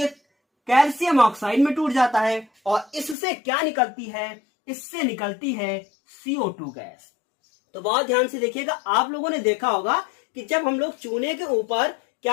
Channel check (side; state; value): right; drops out; at 3.2 s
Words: कैल्शियम ऑक्साइड में टूट जाता है, और इससे क्या निकलती है? इससे निकलती है CO2 गैस। तो बहुत ध्यान से देखिएगा। आप लोगों ने देखा होगा कि जब हम लोग चूने के ऊपर